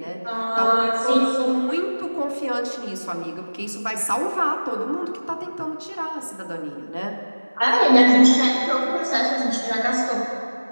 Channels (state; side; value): inverted; both; correlation -1.00